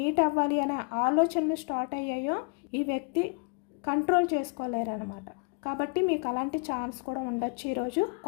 అవ్వాలి అనే ఆలోచనలు స్టార్ట్ అయ్యాయో, ఈ వ్యక్తి కంట్రోల్ చేసుకోలేరు అనమాట. కాబట్టి మీకు అలాంటి ఛాన్స్ కూడా ఉండొచ్చు ఈరోజు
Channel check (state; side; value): quieter; right; 35.5 dB